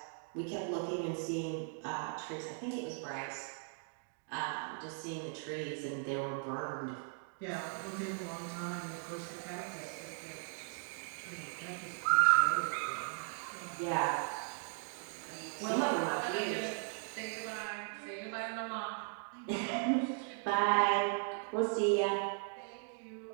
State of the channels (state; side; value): silent; left; 53 dB below the other